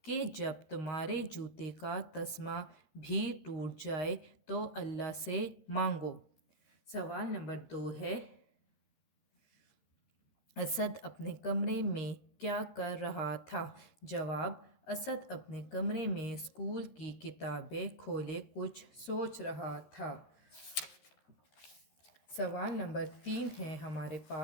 کہ جب تمہارے جوتے کا تسمہ بھی ٹوٹ جائے تو اللہ سے مانگو۔ سوال نمبر 2 ہے، اسد اپنے کمرے میں کیا کر رہا تھا؟ جواب، اسد اپنے کمرے میں اسکول کی کتابیں کھولے کچھ سوچ رہا تھا۔ سوال نمبر 3 ہے ہمارے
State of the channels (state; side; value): late; right; 13 ms